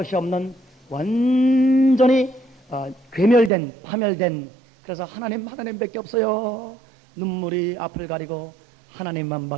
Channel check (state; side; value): drops out; left; at 3.5 s